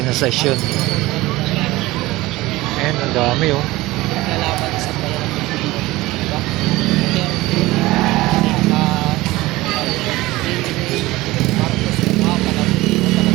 Ayan, ang dami oh.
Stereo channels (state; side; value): quieter; left; 19.1 dB